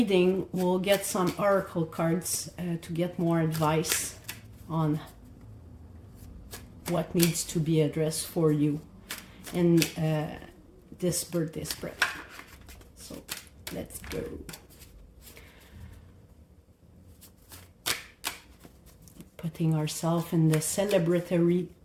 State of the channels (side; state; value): both; identical; correlation 1.00